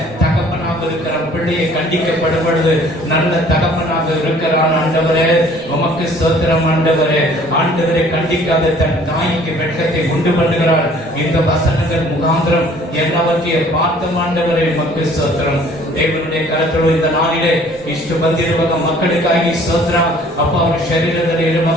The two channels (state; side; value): normal; both; correlation 0.54